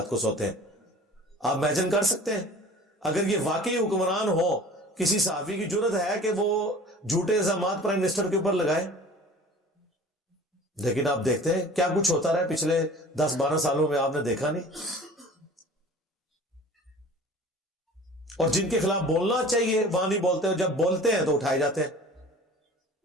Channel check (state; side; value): normal; both; correlation 0.44